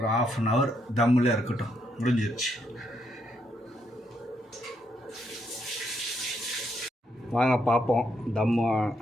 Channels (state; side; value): normal; both; correlation 0.76